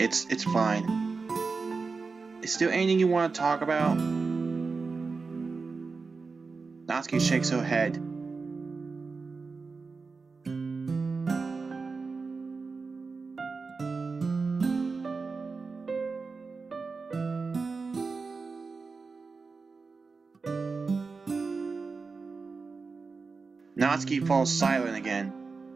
It's fine. Is there anything you want to talk about? Natsuki shakes her head. Natsuki falls silent again.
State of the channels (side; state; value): left; quieter; 4.5 dB